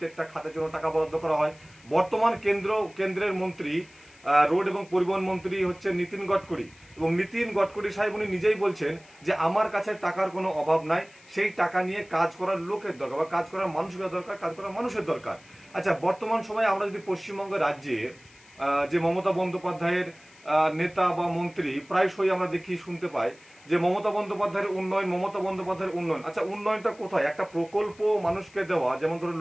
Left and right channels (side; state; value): left; noise; hiss, 26 dB below the sound